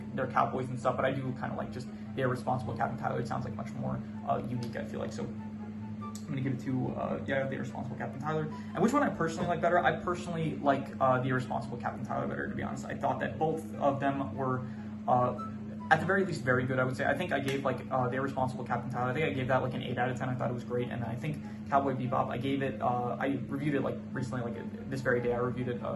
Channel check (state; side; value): identical; both; correlation 1.00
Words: they're cowboys and stuff. But I do kind of like just the Irresponsible Captain Tylor. It sounds like much more unique, I feel like. So I'm gonna give it to the Irresponsible Captain Tylor. And which one I personally like better? I personally like the Irresponsible Captain Tylor better, to be honest. I thought that both of them were at the very least very good, I would say. I think I gave like the Irresponsible Captain Tylor, I think I gave that like an 8 out of 10. I thought it was great. And then I think Cowboy Bebop, I gave it, I reviewed it like recently, like this very day I reviewed it,